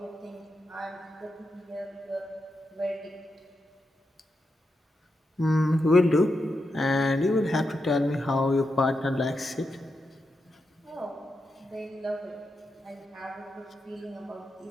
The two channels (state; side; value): normal; both; correlation 0.86